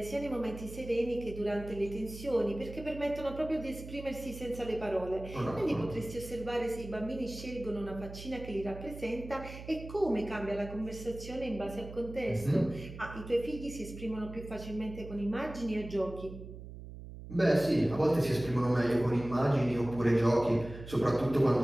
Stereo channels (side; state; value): right; noise; hum, 12 dB below the sound